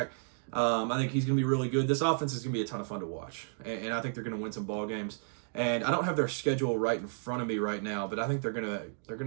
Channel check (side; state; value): left; silent; digital silence